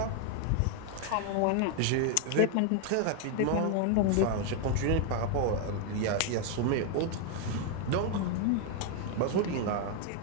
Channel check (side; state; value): both; different; correlation 0.01